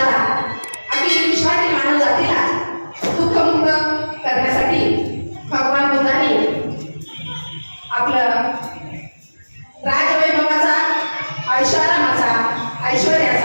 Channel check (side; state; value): both; inverted; correlation -1.00